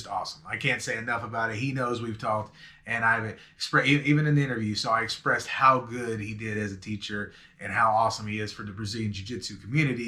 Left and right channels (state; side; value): identical; both; correlation 1.00